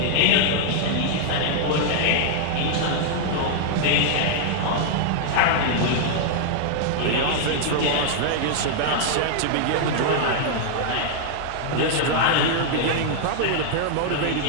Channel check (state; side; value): different; both; correlation -0.01